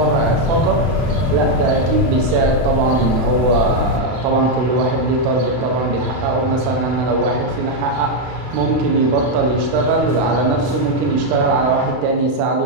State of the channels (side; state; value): left; late; 32 ms